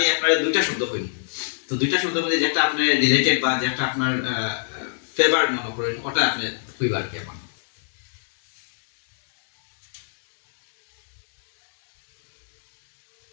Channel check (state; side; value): silent; right; digital silence